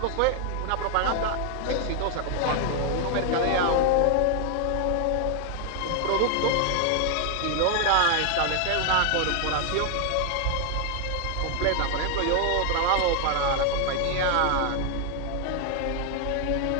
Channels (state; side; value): different; both; correlation 0.00